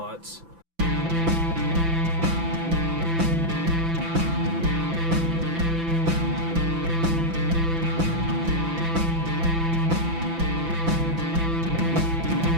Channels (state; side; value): late; left; 5.9 ms